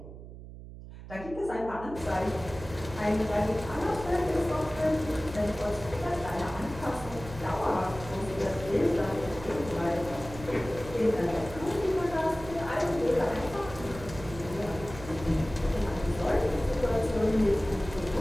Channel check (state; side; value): noise; right; hum, 14 dB below the sound